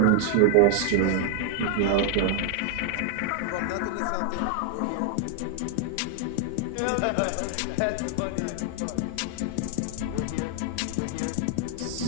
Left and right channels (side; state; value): both; different; correlation 0.00